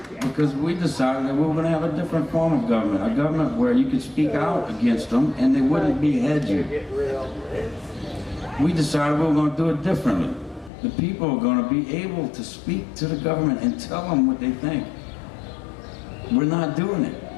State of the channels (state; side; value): drops out; right; at 10.7 s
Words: because we decided that we were going to have a different form of government, a government where you could speak out against them and they wouldn't behead you. We decided we were going to do it differently. The people are going to be able to speak to the government and tell them what they think. We're not doing